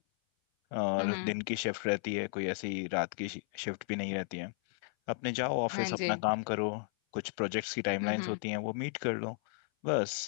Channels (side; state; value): right; silent; 55 dB below the other